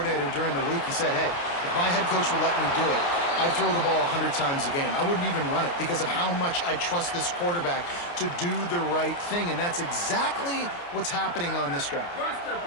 during the week, he said, hey, if my head coach would let me do it, I'd throw the ball 100 times a game. I wouldn't even run it because of how much I trust this quarterback to do the right thing. And that's exactly what's happening on this drive.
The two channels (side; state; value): right; late; 29 ms